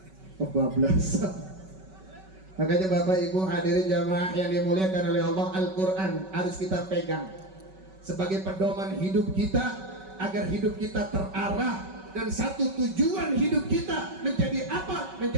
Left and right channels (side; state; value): left; late; 5.3 ms